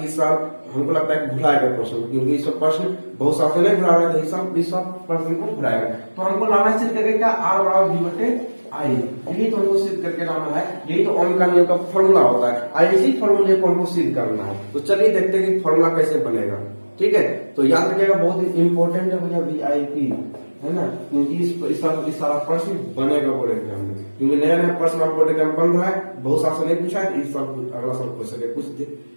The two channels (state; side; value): inverted; both; correlation -1.00